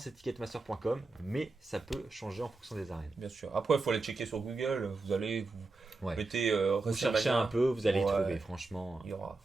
ticketmaster.com, mais ça peut changer en fonction des arènes. Bien sûr. Après il faut aller checker sur Google. Vous allez mettez vous cherchez un peu, vous allez y trouver, franchement. Il y aura.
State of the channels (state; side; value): quieter; left; 3.5 dB